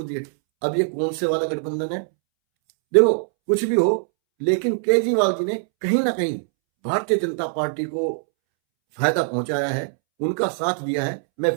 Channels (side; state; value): left; silent; 64 dB below the other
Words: है। अब ये कौन से वाला गठबंधन है? देखो, कुछ भी हो, लेकिन केजरीवाल जी ने कहीं ना कहीं भारतीय जनता पार्टी को फायदा पहुंचाया है, उनका साथ दिया है। मैं